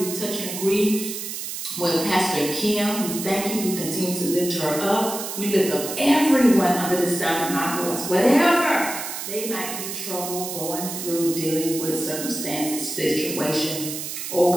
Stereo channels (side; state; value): right; noise; hiss, 6 dB below the sound